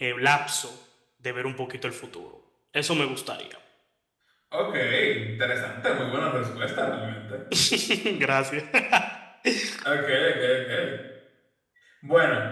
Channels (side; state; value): both; identical; correlation 1.00